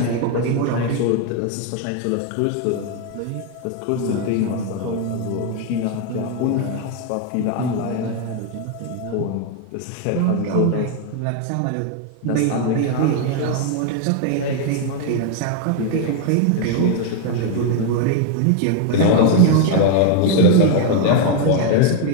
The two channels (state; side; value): different; both; correlation 0.01